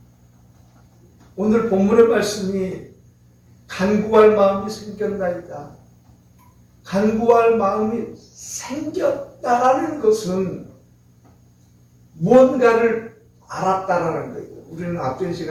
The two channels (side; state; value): both; identical; correlation 1.00